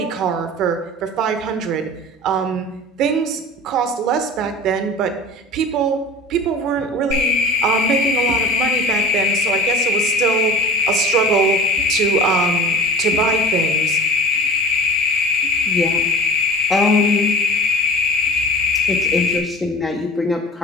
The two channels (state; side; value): normal; both; correlation 0.37